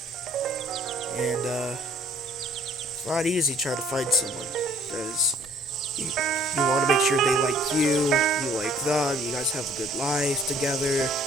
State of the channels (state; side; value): normal; both; correlation 0.58